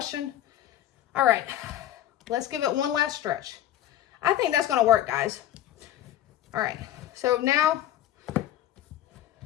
All right, let's give it one last stretch. I think that's going to work, guys. All right, so now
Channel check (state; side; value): quieter; right; 12.3 dB